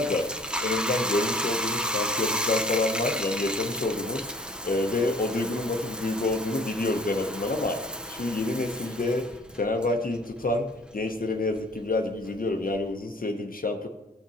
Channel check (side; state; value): both; normal; correlation 0.53